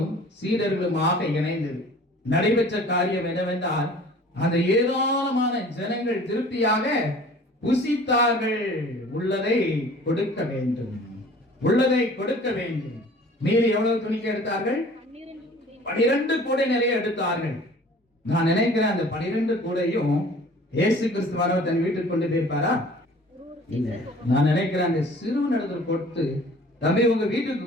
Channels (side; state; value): both; normal; correlation 0.48